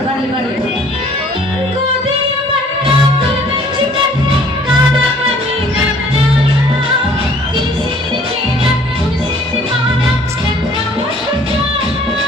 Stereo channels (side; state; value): both; normal; correlation 0.56